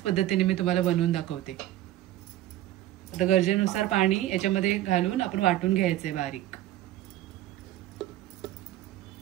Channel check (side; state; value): left; quieter; 14.0 dB